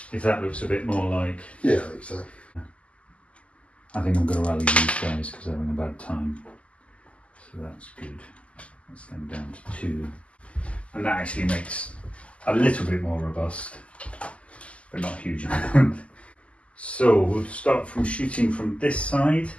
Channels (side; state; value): right; late; 0.060 ms